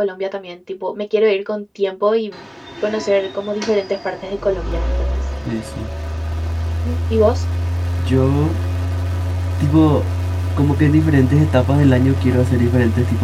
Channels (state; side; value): identical; both; correlation 1.00